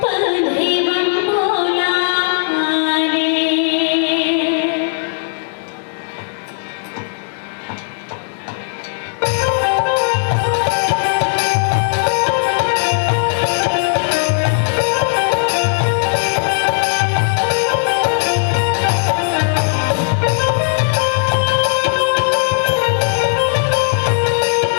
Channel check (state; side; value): silent; right; digital silence